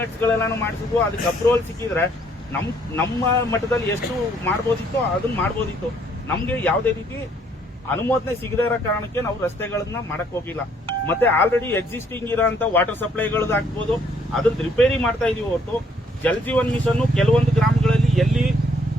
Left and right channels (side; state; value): both; normal; correlation 0.65